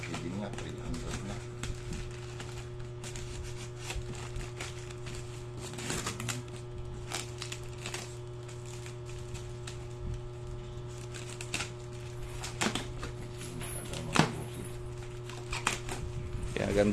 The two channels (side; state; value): both; identical; correlation 1.00